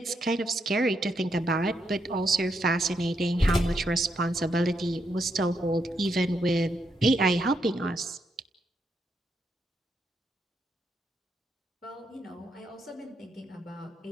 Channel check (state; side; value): normal; both; correlation 0.79